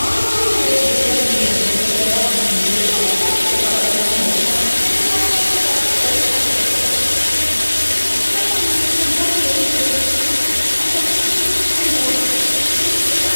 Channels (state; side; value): inverted; both; correlation -1.00